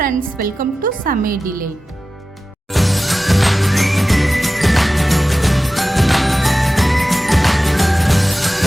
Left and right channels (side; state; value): both; normal; correlation 0.94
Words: வெல்கம் டு சமையல்.